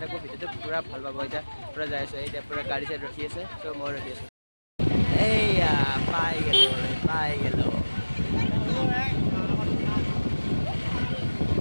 থাকোঁ ভিডিঅ'টো পুৰা ভাল পাব এতিয়া পুৰা যাই আছোঁ এতিয়া পুৰা গাড়ী চাইড ৰখি আছে চ' মই ৰখি আছোঁ এইয়া পাই গ'লোঁ পাই গ'লোঁ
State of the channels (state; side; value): inverted; both; correlation -1.00